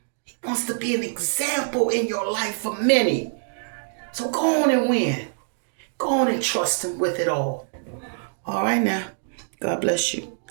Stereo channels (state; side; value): silent; left; digital silence